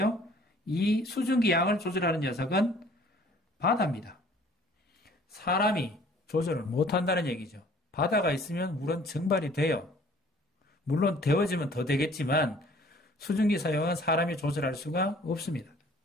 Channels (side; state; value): both; normal; correlation 0.54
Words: 이 수증기 양을 조절하는 녀석은 바다입니다. 사람이 조절을 못한다는 얘기죠. 바다가 있으면 물은 증발이 돼요. 물론 데워지면 더 되겠지만 수증기 사용은 사람이 조절할 수가 없습니다.